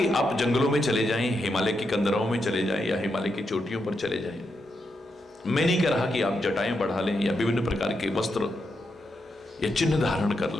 आप जंगलों में चले जाएं, हिमालय की कंदराओं में चले जाएं या हिमालय की चोटियों पर चले जाएं। मैं नहीं कह रहा कि आप जटाएं बढ़ा लें या विभिन्न प्रकार के वस्त्र या चिन्ह धारण कर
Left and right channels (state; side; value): normal; both; correlation 0.84